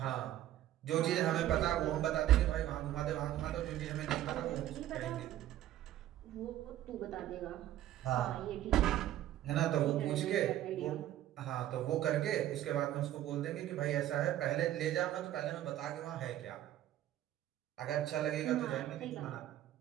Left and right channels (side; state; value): left; quieter; 13.0 dB